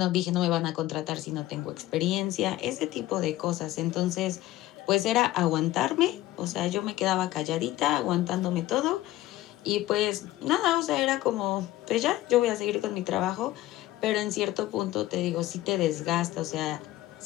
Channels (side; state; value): right; quieter; 16.0 dB